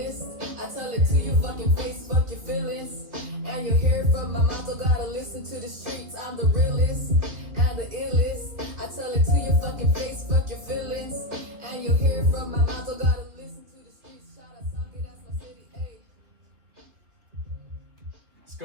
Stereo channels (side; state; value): left; late; 3.0 ms